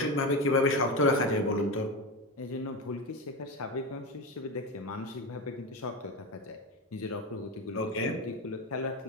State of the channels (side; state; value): both; normal; correlation 0.20